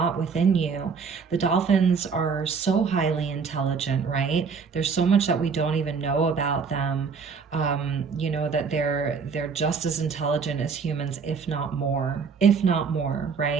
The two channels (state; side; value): quieter; left; 5.5 dB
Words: within you. The dolphins are so highly intelligent, right? There's so much that we don't even know about them. That they're just as intelligent as humans, if not more,